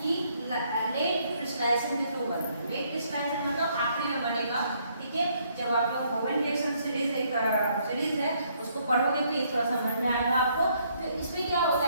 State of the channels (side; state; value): both; inverted; correlation -0.69